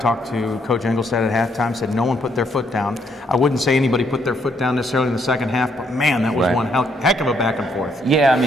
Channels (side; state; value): both; normal; correlation 0.72